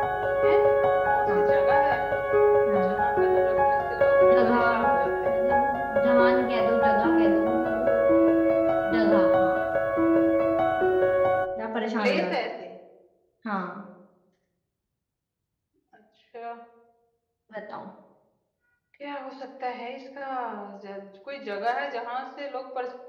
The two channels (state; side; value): identical; both; correlation 1.00